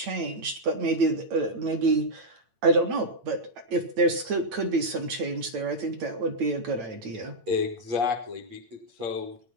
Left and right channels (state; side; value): late; left; 8.7 ms